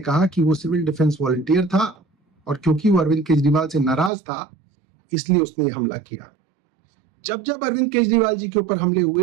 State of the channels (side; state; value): left; drops out; at 4.1 s